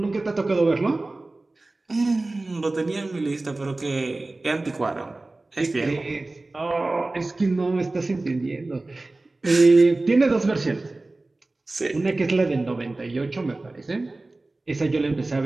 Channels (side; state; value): left; quieter; 3.0 dB